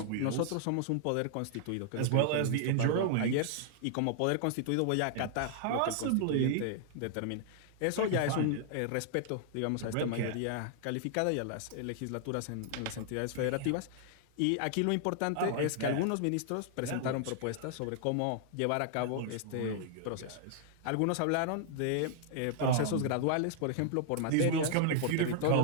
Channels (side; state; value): both; different; correlation 0.00